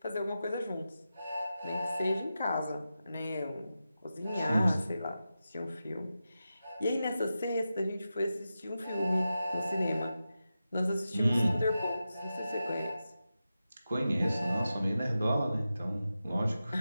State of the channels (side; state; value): both; inverted; correlation -0.92